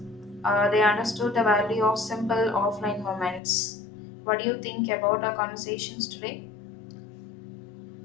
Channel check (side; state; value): right; drops out; at 3.4 s